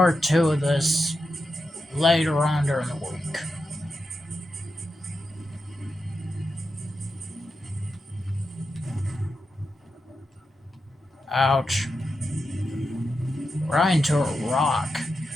2 of this later on during the week. Ouch. Right into a rock.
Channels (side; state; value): both; normal; correlation 0.88